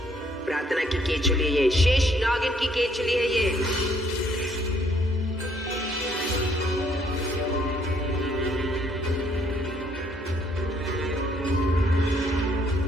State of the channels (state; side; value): normal; both; correlation 0.67